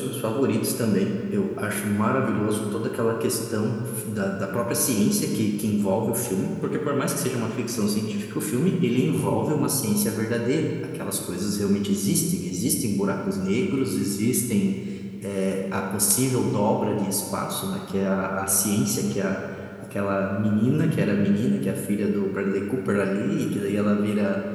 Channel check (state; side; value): identical; both; correlation 1.00